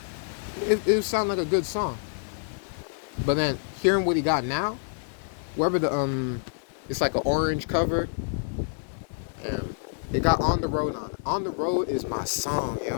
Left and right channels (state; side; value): silent; right; digital silence